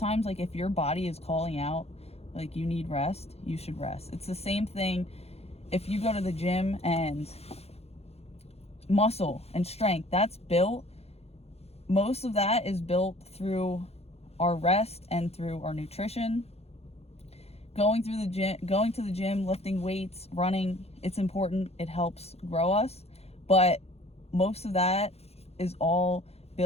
like, if your body is calling out, like, you need rest, you should rest. It's the same thing if you go to the gym, and muscle and strength, that's built. Most of that is built through our rest and through our nutrition. Going to the gym, lifting weights, running, it's important. It helps grow us. But most of that is all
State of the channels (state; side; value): late; right; 0.30 ms